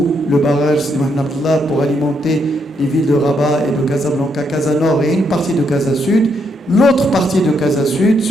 le barrage Sidi Mohamed Abdallah pour alimenter les villes de Rabat et de Casablanca, Casa Nord et une partie de Casa Sud, l'autre partie de Casa Sud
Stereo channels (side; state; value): both; normal; correlation 0.76